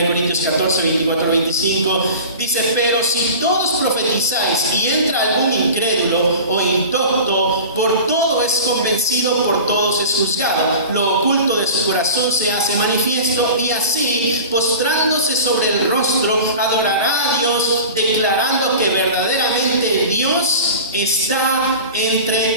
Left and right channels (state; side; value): inverted; both; correlation -0.36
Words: Corintios 14, 24, 25, dice, pero si todos profetizáis y entra algún incrédulo o indocto, por todo es convencido, por todos es juzgado, lo oculto de su corazón se hace manifiesto, y así, postrándose sobre el rostro, adorará a Dios, declarando que verdaderamente Dios está